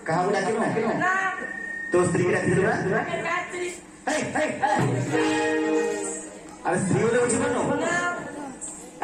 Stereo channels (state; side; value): identical; both; correlation 1.00